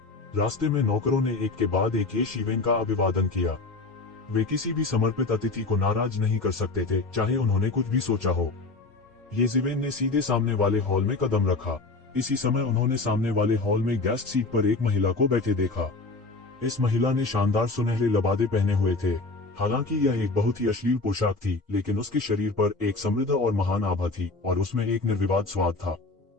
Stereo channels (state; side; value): quieter; right; 3.5 dB